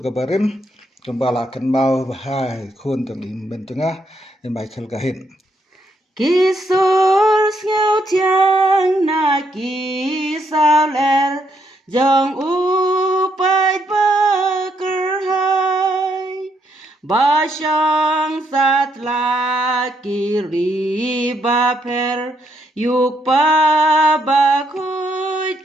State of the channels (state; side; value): normal; both; correlation 0.75